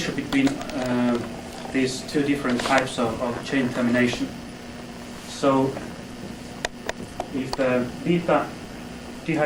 between these two different types of chain termination. So if the beta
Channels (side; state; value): both; identical; correlation 1.00